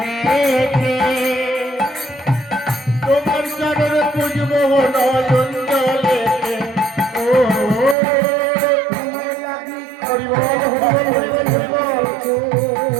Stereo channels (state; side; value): drops out; left; at 8.0 s